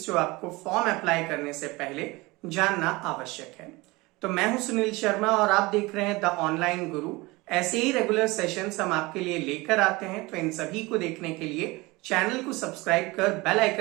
जो आपको फॉर्म अप्लाई करने से पहले जानना आवश्यक है। तो मैं हूं सुनील शर्मा और आप देख रहे हैं द ऑनलाइन गुरु। ऐसे ही रेगुलर सेशंस हम आपके लिए लेकर आते हैं, तो इन सभी को देखने के लिए चैनल को सब्सक्राइब कर बेल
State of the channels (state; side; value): quieter; left; 22.7 dB